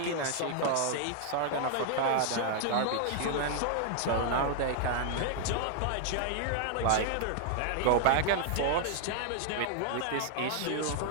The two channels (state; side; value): different; both; correlation 0.00